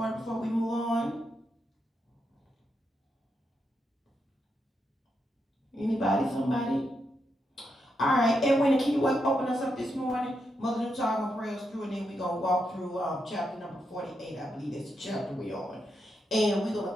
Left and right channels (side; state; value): both; normal; correlation 0.83